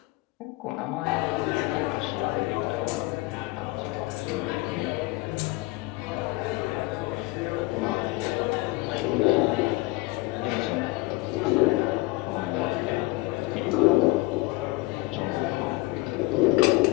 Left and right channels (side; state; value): right; quieter; 20.9 dB